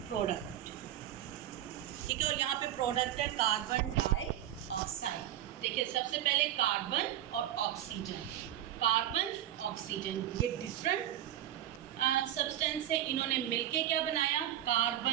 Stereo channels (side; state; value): left; quieter; 12.2 dB